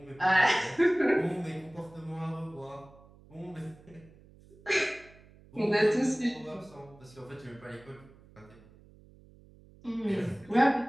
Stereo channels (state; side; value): noise; right; hum, 24 dB below the sound